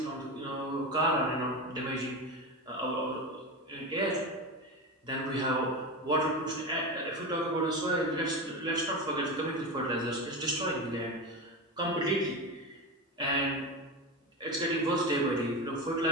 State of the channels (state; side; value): normal; both; correlation 0.21